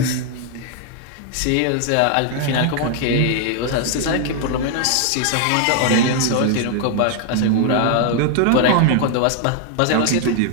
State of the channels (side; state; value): both; different; correlation 0.00